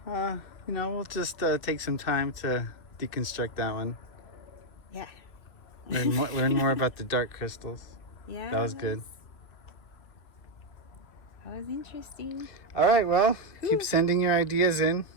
we'll just take some time to deconstruct that one. Yeah. Learn more about the dark crystals. Yeah. That was good. That was interesting. All right, well, keep sending your ideas in.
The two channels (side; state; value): right; late; 2.3 ms